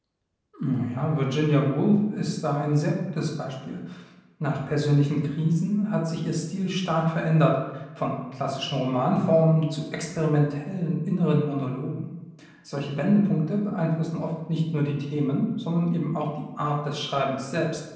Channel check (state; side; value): identical; both; correlation 1.00